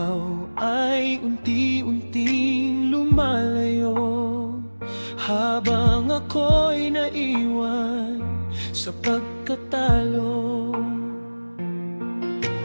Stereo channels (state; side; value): inverted; both; correlation -1.00